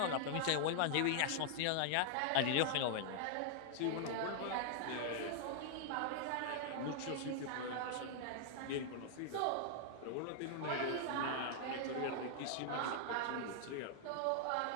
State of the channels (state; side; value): different; both; correlation -0.01